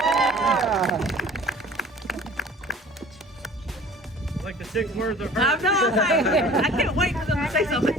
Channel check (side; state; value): both; normal; correlation 0.46